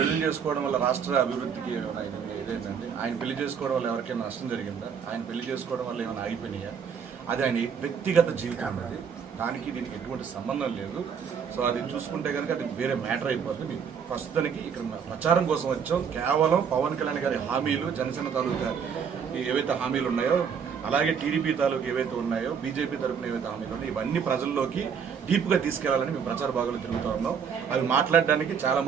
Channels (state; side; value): quieter; left; 6.9 dB